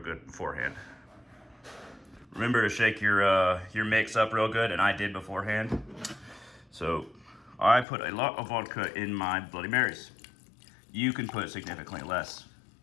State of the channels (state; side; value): drops out; right; at 7.9 s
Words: beforehand. Remember to shake your mix up real good, and I did beforehand. So I put a lot of vodka in my Bloody Marys. You can put significantly less.